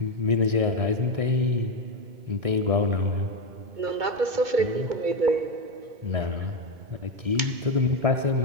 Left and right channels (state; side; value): late; left; 2.2 ms